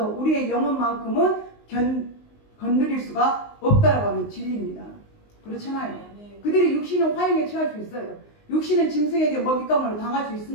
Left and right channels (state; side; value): late; right; 19 ms